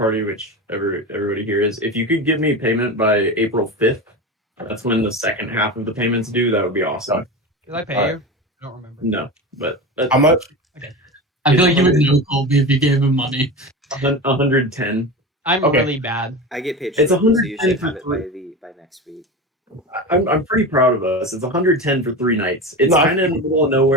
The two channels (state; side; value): normal; both; correlation 0.26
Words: which everybody here is, if you could give me payment by April 5th, that's when the second half of the payments due. That would be awesome. Did I pay All you? right. I don't remember. No, but How much? I feel like you would know Colby if you gave him money. 110. I'm Okay. really bad. I get paid. It's shortly, so you 110 should have it for by next week. I'm pretty proud of us. It's 110 for 3 nights. It's No, kind of in the middle of